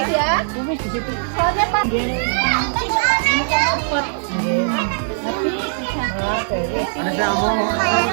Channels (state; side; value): silent; left; 65 dB below the other